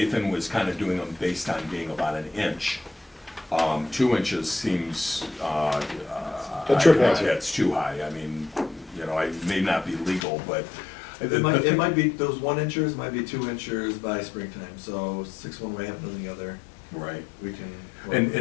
was kind of doing them based on being about an inch. 2 inches seems, A trip hazard. It's too high. I mean, you know, it may not be legal, but It might be, those 1 inchers might be 2 inchers by springtime, so 6 one way, half a dozen the other, Right. we can.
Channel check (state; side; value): drops out; right; at 10.2 s